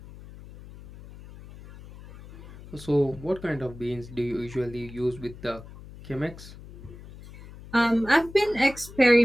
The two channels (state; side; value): noise; left; hum, 17 dB below the sound